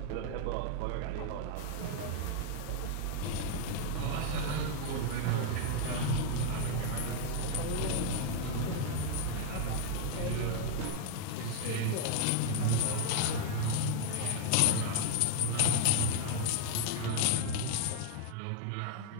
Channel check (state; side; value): different; both; correlation 0.00